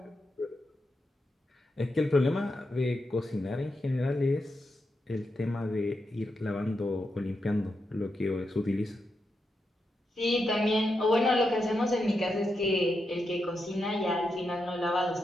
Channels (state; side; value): normal; both; correlation 0.85